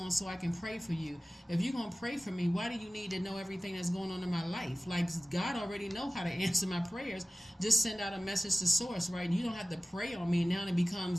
so I can pray for you. If you're going to pray for me, why do you need to know everything that's going on in my life? Like, God already know how to answer my prayers. Just send out a message to source, right? You don't have to pray on me. Now it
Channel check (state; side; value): normal; both; correlation 0.96